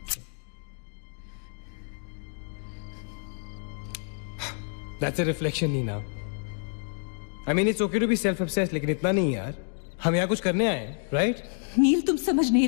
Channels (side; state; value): right; silent; 56 dB below the other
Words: That's a reflection, Neena. I mean, it's okay to be self-obsessed, लेकिन इतना नहीं यार। हम यहाँ कुछ करने आए हैं, right? नील तुम समझ नहीं